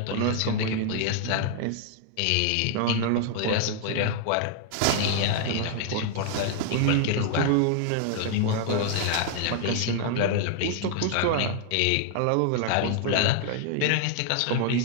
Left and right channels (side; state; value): both; different; correlation 0.00